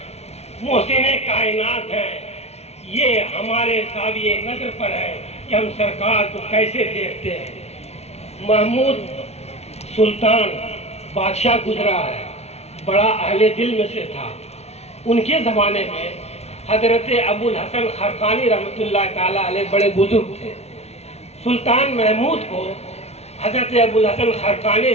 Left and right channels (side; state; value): right; late; 0.31 ms